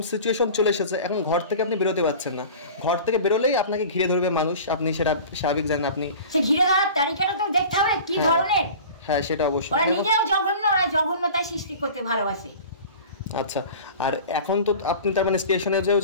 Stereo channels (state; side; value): inverted; both; correlation -0.39